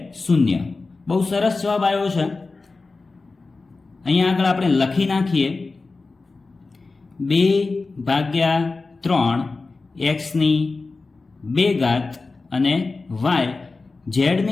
0. બહુ સરસ જવાબ આવ્યો છે. અહીંયા આગળ આપણે લખી નાખીએ 2/3 એક્સની 2 ઘાત અને વાય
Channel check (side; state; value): right; quieter; 3.8 dB